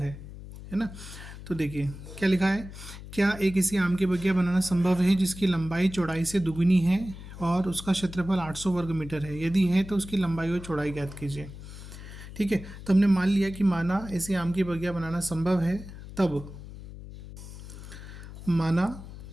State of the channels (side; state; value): left; noise; hum, 13 dB below the sound